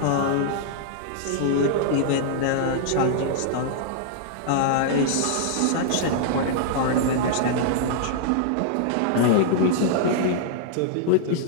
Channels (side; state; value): both; different; correlation -0.01